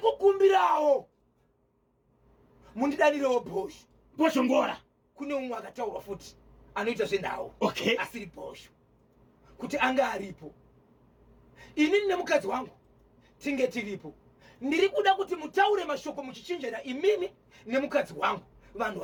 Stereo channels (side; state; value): both; identical; correlation 1.00